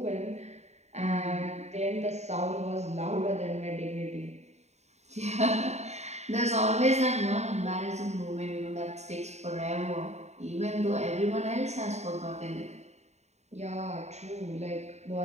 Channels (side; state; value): left; late; 0.32 ms